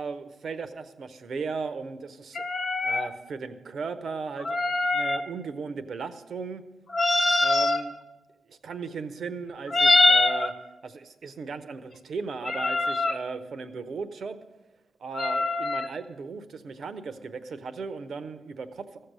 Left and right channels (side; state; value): both; normal; correlation 0.88